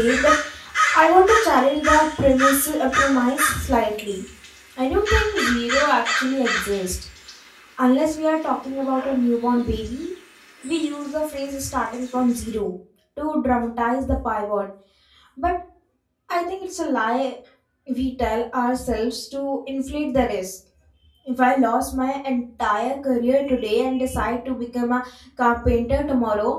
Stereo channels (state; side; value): identical; both; correlation 1.00